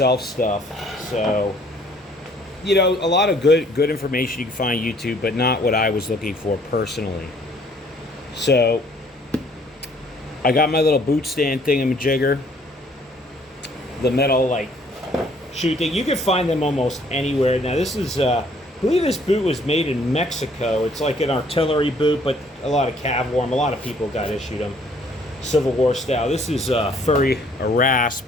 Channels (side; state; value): both; normal; correlation 0.61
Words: stuff. So a lot of good information you can find on YouTube, but not what I was looking for personally. So I got my little boot stand thingamajigger, the metal like shoe thing. You can find them almost anywhere. Now this is, I believe this boot was made in Mexico. It's like an artillery boot, but a lot of cav wore them. A lot of people got issued them, Civil War style. This is a rasp